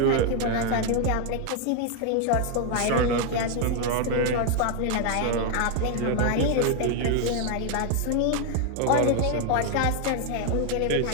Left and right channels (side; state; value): both; different; correlation 0.00